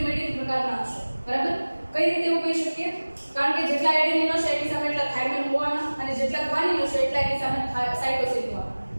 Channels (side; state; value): both; inverted; correlation -1.00